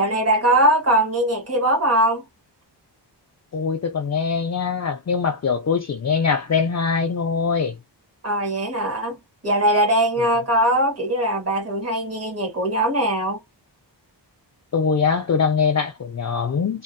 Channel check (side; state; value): both; normal; correlation -0.07